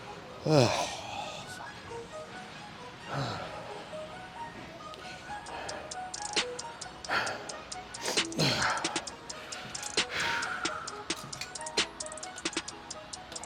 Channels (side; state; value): both; identical; correlation 1.00